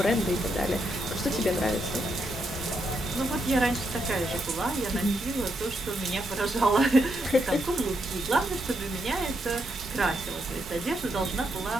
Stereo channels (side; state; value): both; normal; correlation 0.80